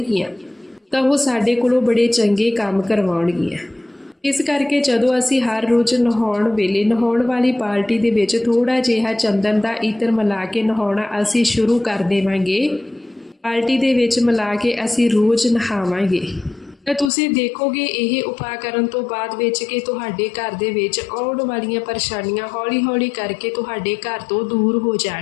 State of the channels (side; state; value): right; drops out; at 17.1 s